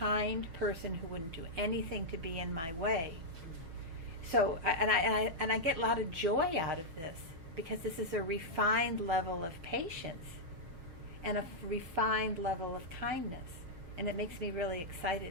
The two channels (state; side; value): late; left; 6.2 ms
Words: person who wouldn't do anything to be in my way. So, I get a lot of joy out of this because this is a refined level of patience and a refined level of kindness. And it makes me really